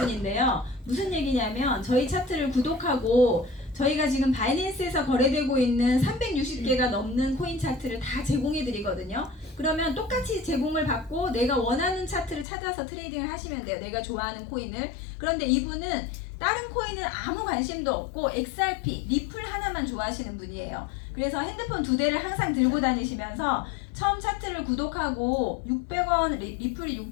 무슨 얘기냐면 저희 차트를 구독하고 저희가 지금 바이낸스에서 거래되고 있는 360개가 넘는 코인 차트를 다 제공해 드리거든요. 그러면 똑같이 제공을 받고 내가 원하는 차트를 찾아서 트레이딩을 하시면 돼요. 내가 좋아하는 코인을. 그런데 이분은 다른 코인은 아무 관심도 없고 XRP, 리플 하나만 좋아하시는 분이에요. 그래서 핸드폰 2대를 항상 들고 다니시면서 처음 차트를 구독하고 600원, 리플이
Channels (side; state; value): right; drops out; at 12.5 s